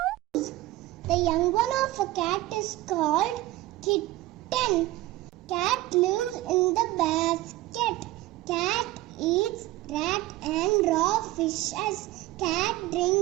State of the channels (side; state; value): left; quieter; 17.3 dB